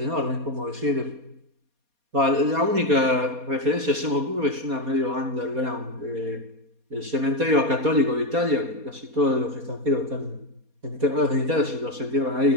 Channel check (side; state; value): left; late; 4.2 ms